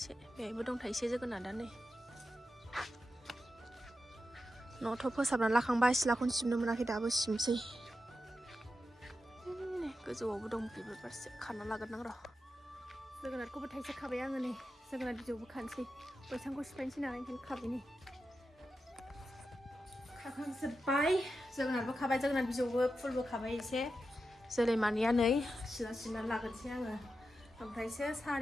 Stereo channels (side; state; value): both; normal; correlation 0.89